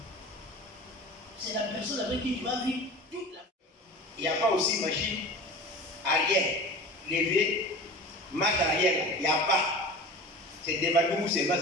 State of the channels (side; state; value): both; normal; correlation 0.36